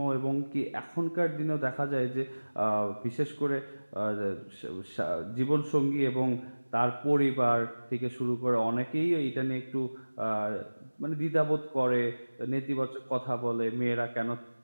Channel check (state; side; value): inverted; both; correlation -1.00